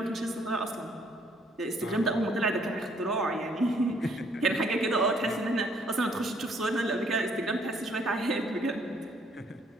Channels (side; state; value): both; normal; correlation 0.65